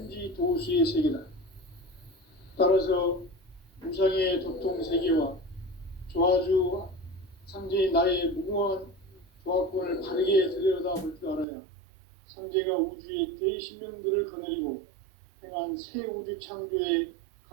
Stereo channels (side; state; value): left; drops out; at 11.5 s